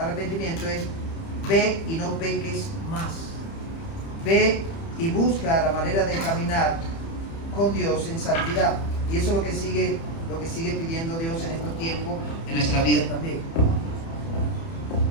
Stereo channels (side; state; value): right; late; 30 ms